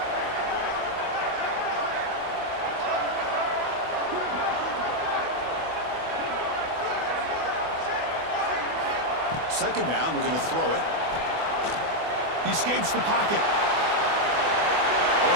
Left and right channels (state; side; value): late; left; 24 ms